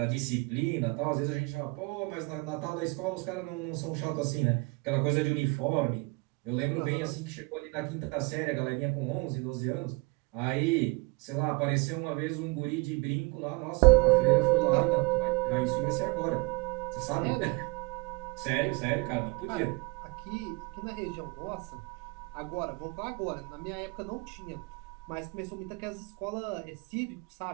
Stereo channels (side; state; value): left; quieter; 27.9 dB